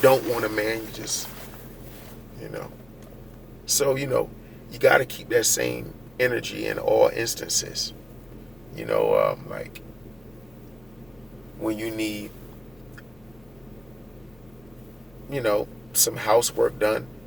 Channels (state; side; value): noise; left; rumble, 27 dB below the sound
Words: want a man, you just, So, you got to keep that same energy in all instances. Like when you need, some housework done